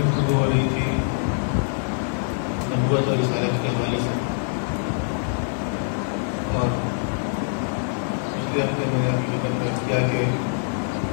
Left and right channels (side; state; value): right; silent; 63 dB below the other